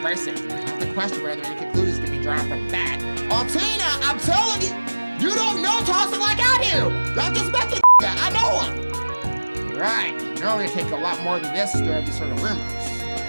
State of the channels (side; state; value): both; inverted; correlation -1.00